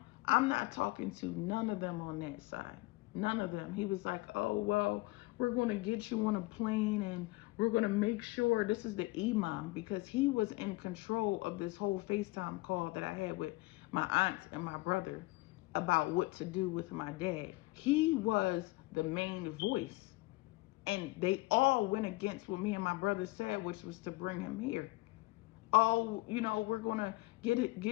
I'm not talking to none of them on that side. None of them. He was like, oh, well, we're going to get you on a plane and we're going to make sure. This is the imam, because he was in control of this whole FaceTime call that I had with my aunt and my brother about what to do with my dad. He was the main voice. And they all went against what me and my brother said, which was to bring him here. Oh, we're going to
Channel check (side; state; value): right; quieter; 21.8 dB